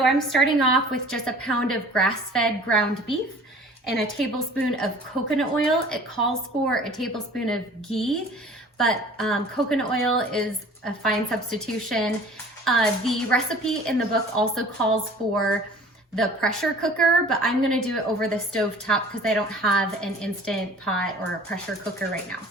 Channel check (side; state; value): both; normal; correlation 0.47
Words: I'm starting off with just a pound of grass-fed ground beef and a tablespoon of coconut oil. It calls for a tablespoon of ghee, but coconut oil is a fine substitution. The recipe in the book also calls for the pressure cooker, but I'm gonna do it over the stove top because I don't have an instant pot or a pressure cooker right now.